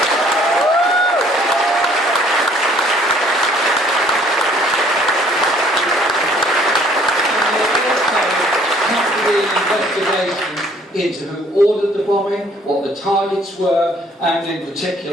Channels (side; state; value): both; normal; correlation 0.59